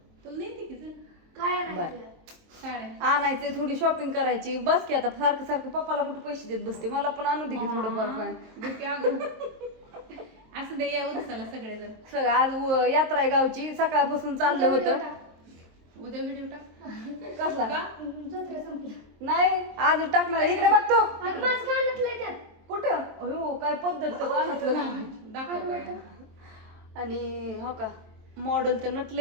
तुला नाही की काय साड्या आणायचे, थोडी शॉपिंग करायची बस की. आता सारखं पप्पाला कुठे पैसे देत बसते. मला पण आणू दे की थोडंफार काय. असं दे या उरसाला सगळेजण. सगळं आज यात्रा आहे गावची. सकाळपासून चाललं होतं. उद्या व्हिडिओ टाक. कसला का? नाही आज टाकणार. इकडे बघतो त्यात कुठं. हो काय पद्धत तर कानातलं लावायची. दाखव काय. आणि हो का मॉडेल तर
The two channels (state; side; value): late; left; 23 ms